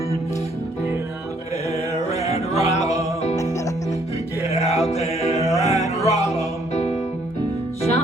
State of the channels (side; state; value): both; normal; correlation 0.66